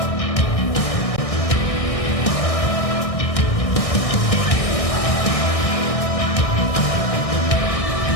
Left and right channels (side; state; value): right; late; 1.6 ms